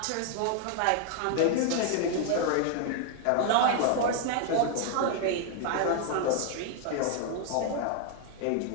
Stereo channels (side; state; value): both; different; correlation 0.00